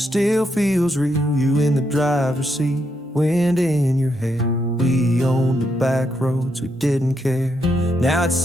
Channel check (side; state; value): both; normal; correlation 0.79